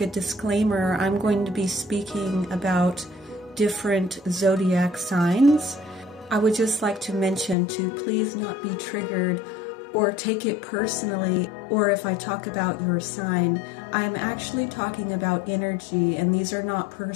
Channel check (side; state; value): right; drops out; at 7.6 s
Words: a disclaimer. I'm going to be speaking about different zodiac signs. I would just like to mention to please not be triggered or take it personally, or if I talk about your sign, I'm actually talking about energy, and these are not